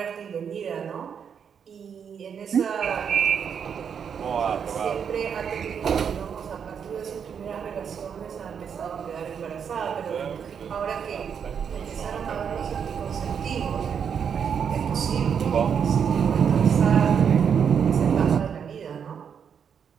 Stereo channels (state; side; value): quieter; left; 7.4 dB